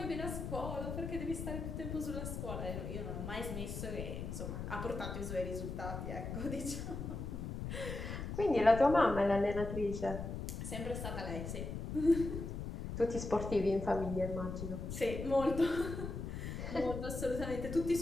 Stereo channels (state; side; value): noise; left; rumble, 5 dB below the sound